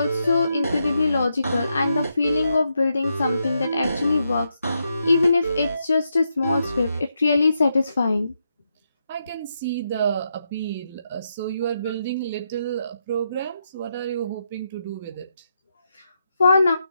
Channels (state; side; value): inverted; both; correlation -0.82